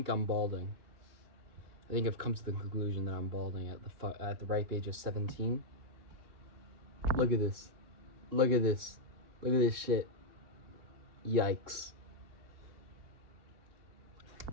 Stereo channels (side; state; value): left; late; 3.7 ms